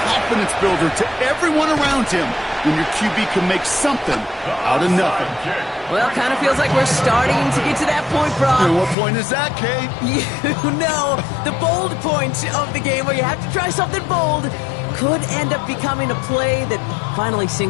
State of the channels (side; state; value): right; drops out; at 9.0 s